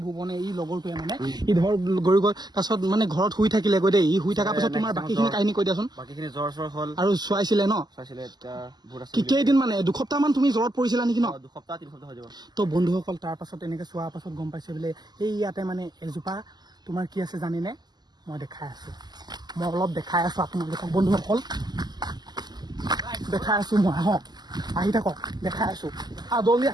ভুৱনে এই লগৰটোৱে মানে ই ধৰ গৈ গ'ল তাৰপাছত মানে ঘৰত শুই থাকিলে গৈ দেই ই শুই থকাৰ পাছত তোমাৰ বাকীখিনি কাহিনী কৈ দিয়াচোন বাকীখিনি জ্বৰ হ'ল আৰু চোৱাইছিলে ন কেইদিন মানে দুসপ্তাহ মান তুমি জ্বৰত পৰিছিলা নেকি ন 2-3 হৈ যাব তো বন্ধুসকল তাৰ পাছত এনেকে চোৱাৰ পাছত গম পাইছে বোলে এই ইয়াতে মানে এজোপা তোমাৰ কি আছে জানেনে মই দেখাই আছো মই অলপ দেখাই আছো আপোনালোকক বন্ধুসকল দেখাই আছো মই আহক আহি থাকক দেখাই আছো জলদি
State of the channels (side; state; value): left; late; 0.20 ms